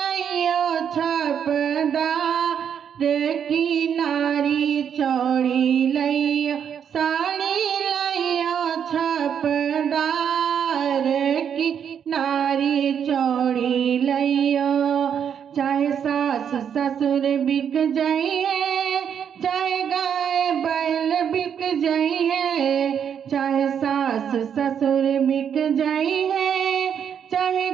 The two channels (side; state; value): left; quieter; 8.1 dB